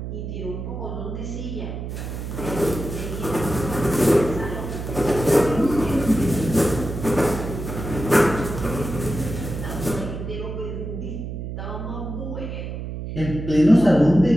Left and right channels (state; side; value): noise; right; hum, 7 dB below the sound